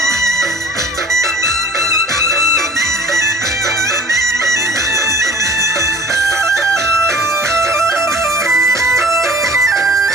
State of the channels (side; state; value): both; normal; correlation 0.48